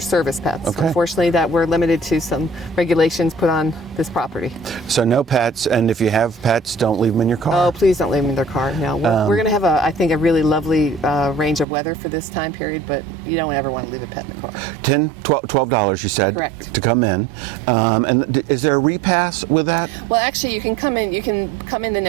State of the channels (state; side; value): drops out; left; at 11.7 s